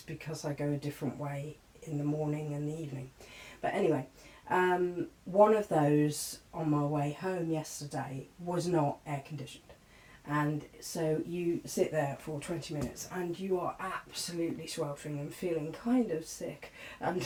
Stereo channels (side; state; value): both; identical; correlation 1.00